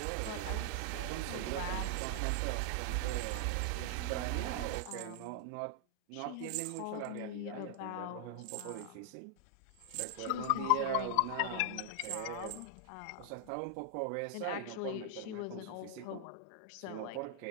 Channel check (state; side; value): different; both; correlation 0.00